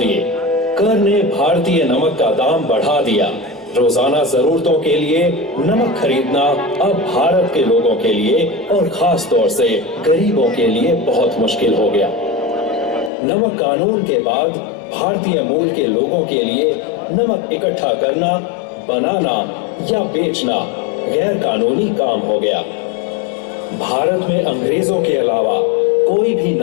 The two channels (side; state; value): right; drops out; at 13.1 s